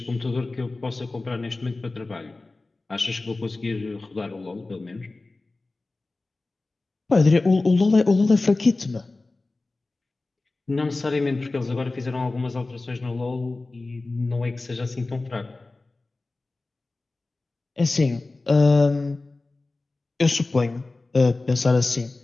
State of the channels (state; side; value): quieter; right; 3.3 dB